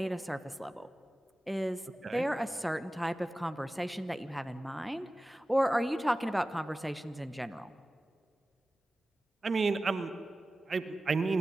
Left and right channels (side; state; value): both; normal; correlation 0.96